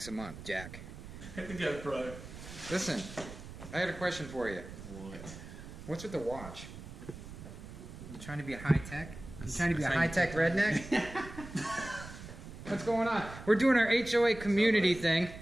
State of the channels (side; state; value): right; noise; rumble, 13 dB below the sound